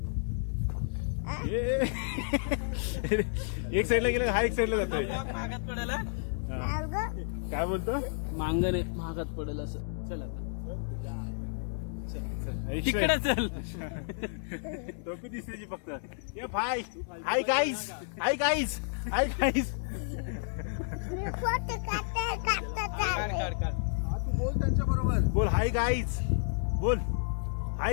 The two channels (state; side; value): silent; right; 57 dB below the other